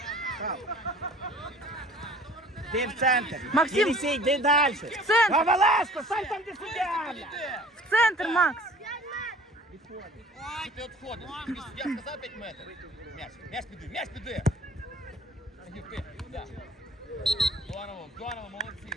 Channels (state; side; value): normal; both; correlation 0.49